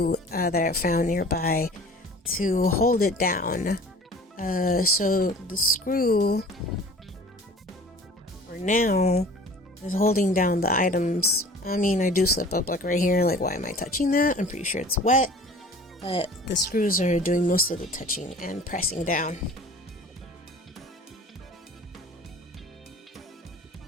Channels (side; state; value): both; normal; correlation 0.45